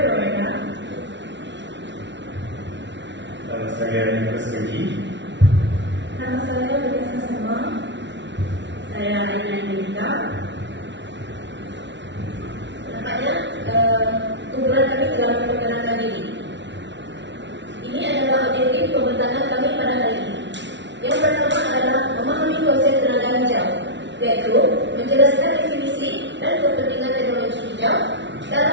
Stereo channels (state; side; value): late; left; 0.52 ms